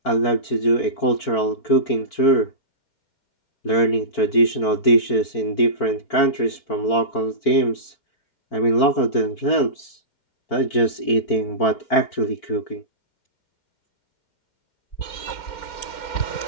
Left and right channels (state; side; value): late; right; 4.5 ms